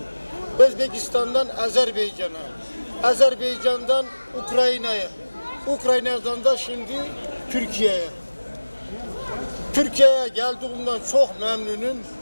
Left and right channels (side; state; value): both; inverted; correlation -1.00